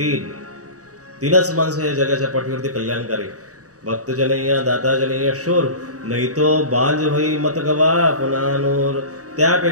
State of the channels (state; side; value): late; left; 0.66 ms